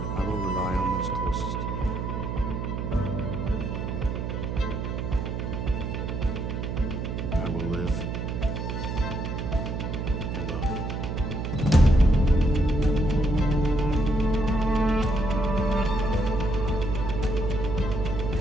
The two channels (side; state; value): right; noise; hum, 3 dB below the sound